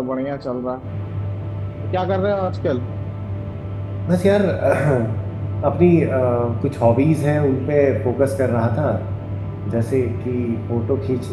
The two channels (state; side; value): identical; both; correlation 1.00